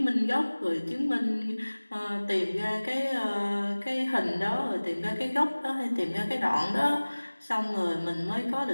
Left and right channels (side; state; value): both; inverted; correlation -1.00